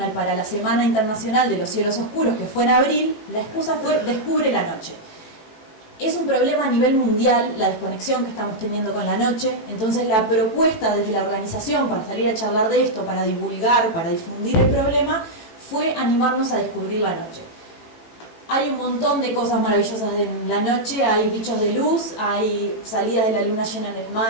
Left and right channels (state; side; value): late; right; 18 ms